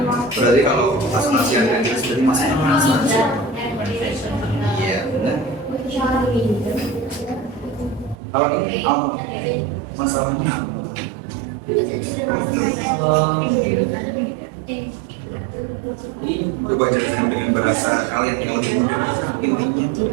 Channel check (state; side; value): drops out; left; at 8.2 s